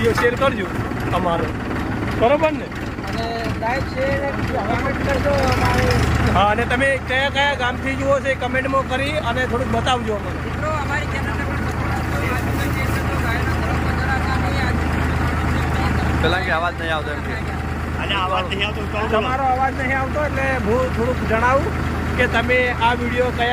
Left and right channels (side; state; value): both; identical; correlation 1.00